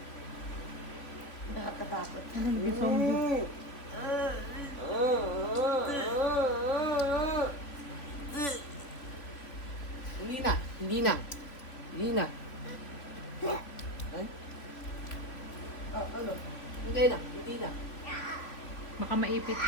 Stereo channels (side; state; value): right; late; 3.3 ms